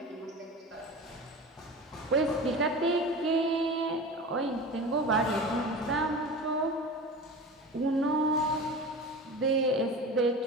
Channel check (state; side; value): normal; both; correlation 0.32